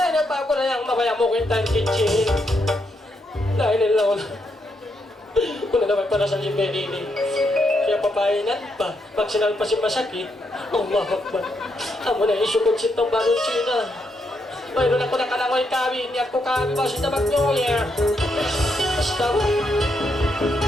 na pa ako na yung mabaya mo kwentang kitchen. Dahil nila ko na. Kuna naman para sa libenini. Kaya papainan pa. Pag sinal pa si masakit, Allah Akbar. Amo na isukod sitong balon China. Mayroon ako na kalangoy kami. Niyak ko kami ba si tabak nyo, yeah. Basta ba?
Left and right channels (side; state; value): both; normal; correlation 0.79